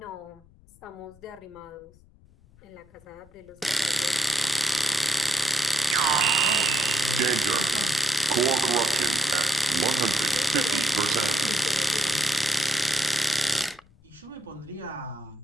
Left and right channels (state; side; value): noise; left; rumble, 27 dB below the sound